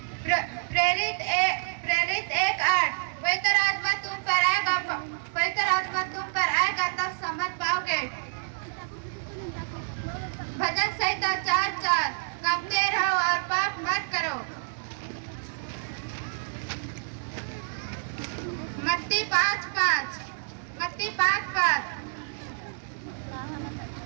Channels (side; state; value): left; silent; digital silence